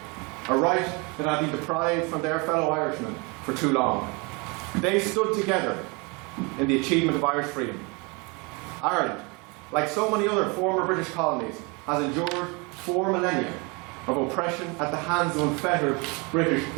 a right that had been deprived from their fellow Irishmen for too long. They stood together in the achievement of Irish freedom. Ireland, like so many other former British colonies, has endured 4 millennia of oppression at the hands of unfettered British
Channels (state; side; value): quieter; left; 29.3 dB